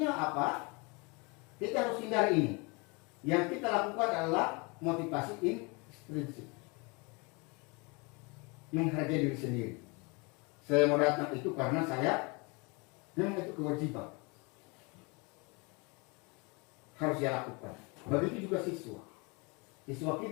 apa? Kita harus hindari ini. Yang kita lakukan adalah motivasi intrinsik. Menghargai diri sendiri. Saya mau datang itu karena memang itu kewajiban. Harus saya lakukan. Begitu juga siswa. Siswa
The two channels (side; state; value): right; quieter; 29.3 dB